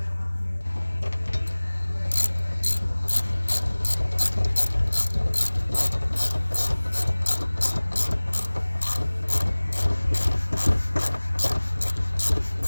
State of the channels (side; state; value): both; inverted; correlation -1.00